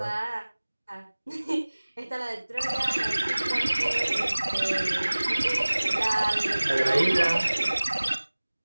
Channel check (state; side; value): inverted; both; correlation -1.00